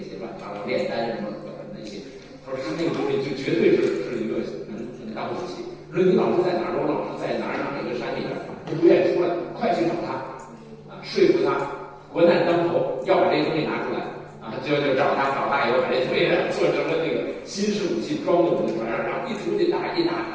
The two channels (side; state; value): both; identical; correlation 1.00